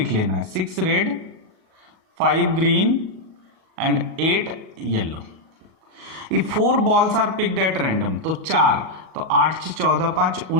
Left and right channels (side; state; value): left; late; 38 ms